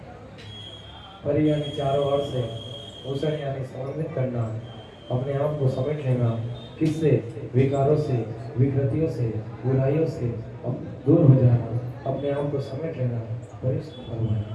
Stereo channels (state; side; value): identical; both; correlation 1.00